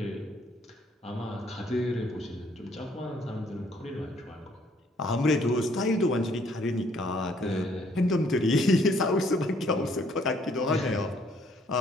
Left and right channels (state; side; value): normal; both; correlation 0.64